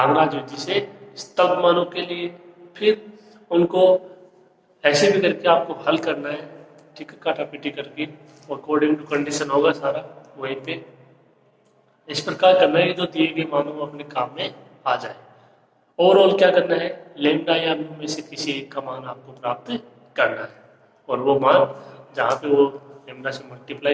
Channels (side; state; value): both; identical; correlation 1.00